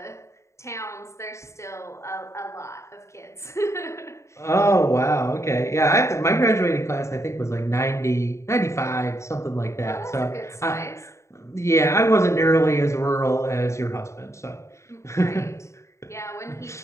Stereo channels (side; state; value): right; late; 0.14 ms